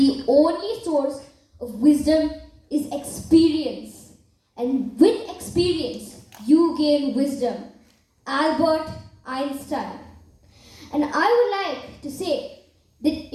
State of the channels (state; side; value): identical; both; correlation 1.00